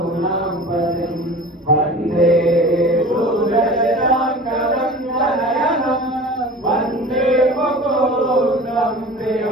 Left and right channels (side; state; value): both; normal; correlation 0.39